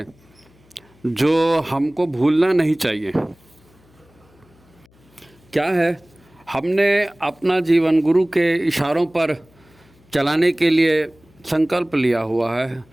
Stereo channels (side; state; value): left; noise; hum, 30 dB below the sound